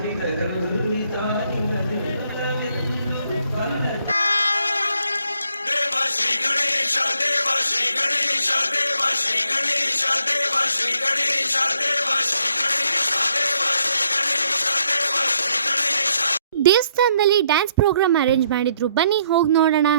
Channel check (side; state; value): both; inverted; correlation -0.71